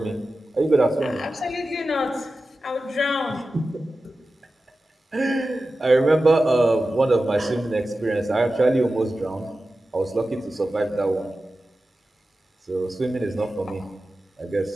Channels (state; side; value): normal; both; correlation 0.94